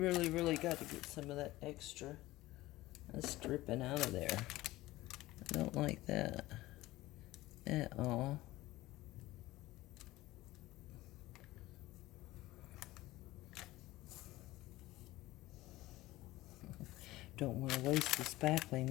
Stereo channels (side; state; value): right; quieter; 17.7 dB